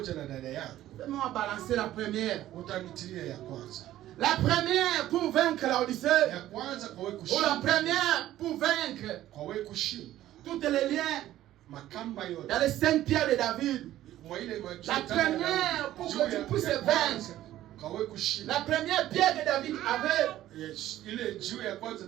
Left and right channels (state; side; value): quieter; left; 13.7 dB